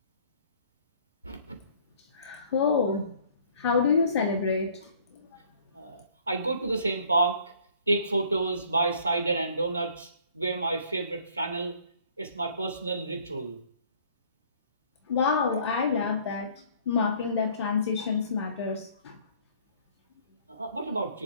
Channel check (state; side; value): inverted; both; correlation -0.57